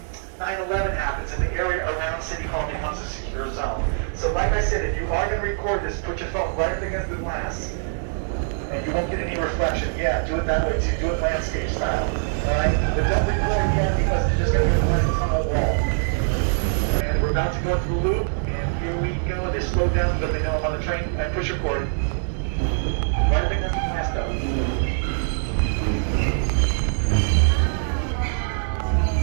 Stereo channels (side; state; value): left; silent; digital silence